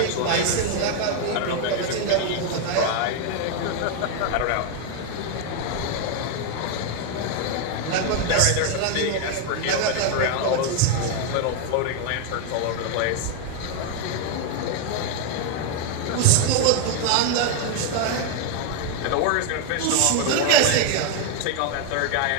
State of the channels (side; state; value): both; different; correlation 0.01